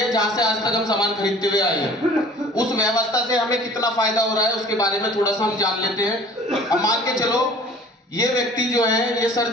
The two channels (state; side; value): normal; both; correlation 0.49